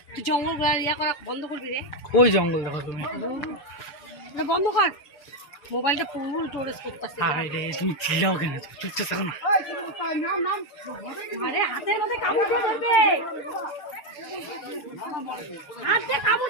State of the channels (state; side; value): late; right; 6.7 ms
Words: তুই জঙ্গল ইয়া করা বন্ধ করবি রে। ওই জঙ্গল দেখো তুমি, বন্ধ কর। মোবাইলটা পুরো স্টোরেজ করতেছে। আরে তুমি চিল্লাও কেন, চুপচাপ থাকো না। আরে হাতের মধ্যে কামড় দিয়ে ধরবে, হাতে কামড়